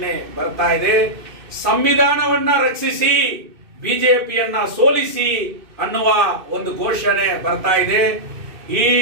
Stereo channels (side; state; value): left; late; 2.6 ms